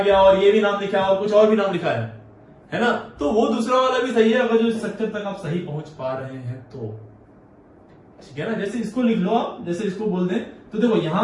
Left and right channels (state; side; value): identical; both; correlation 1.00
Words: और ये भी नाम लिखा है और कुछ और भी नाम लिखा है ना, तो वो दूसरा वाला भी सही है, अगर जो स्ट्रक्चर तक आप सही पहुंच पा रहे हैं तो, ठीक है ना? जैसे इसको लिख लो आप, जैसे इसको बोल दें तो देखो